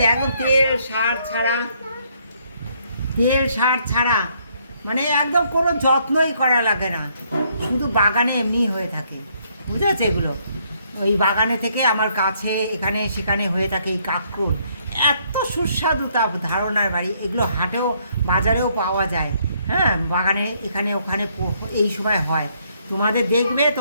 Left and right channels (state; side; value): inverted; both; correlation -0.69